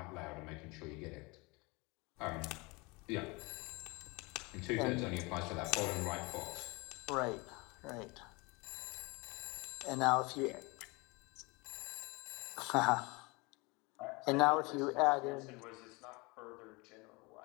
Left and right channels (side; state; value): right; quieter; 26.4 dB